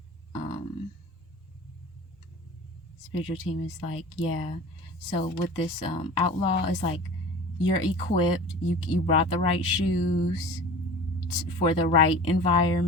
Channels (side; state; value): both; normal; correlation 0.38